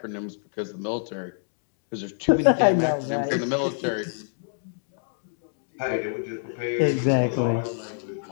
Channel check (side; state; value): right; silent; digital silence